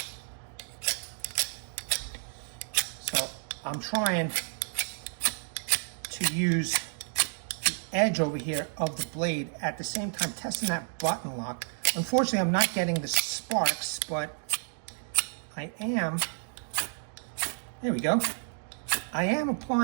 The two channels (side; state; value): left; silent; digital silence